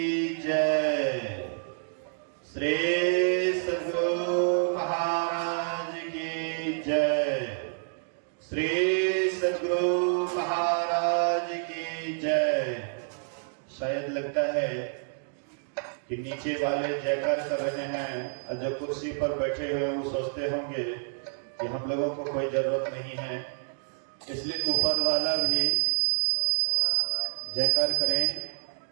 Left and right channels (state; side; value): silent; left; digital silence